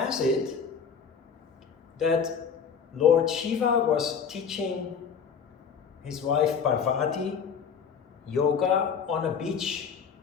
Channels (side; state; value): right; quieter; 6.6 dB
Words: it that Lord Shiva was teaching his wife Parvati yoga on a beach